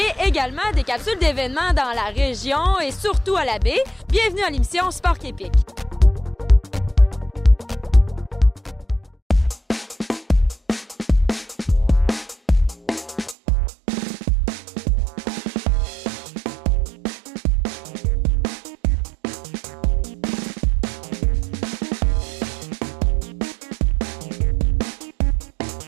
également des capsules d'événements dans la région et surtout à la baie. Bienvenue à l'émission Sport Québec.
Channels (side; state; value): left; drops out; at 13.4 s